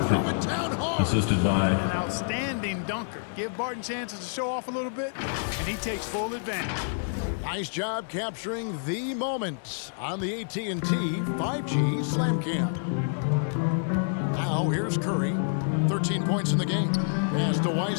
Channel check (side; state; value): right; silent; digital silence